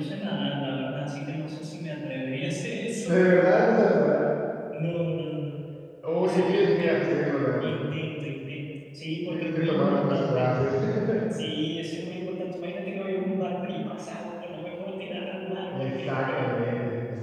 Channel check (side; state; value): both; identical; correlation 1.00